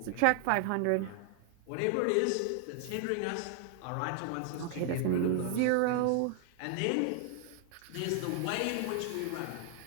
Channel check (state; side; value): different; both; correlation 0.00